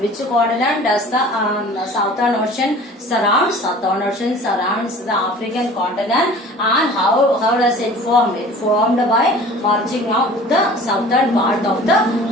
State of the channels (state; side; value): normal; both; correlation 0.44